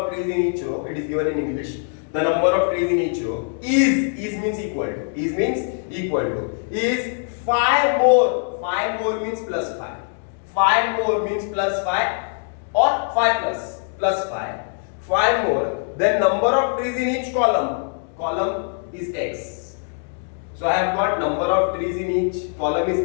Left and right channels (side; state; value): right; silent; 64 dB below the other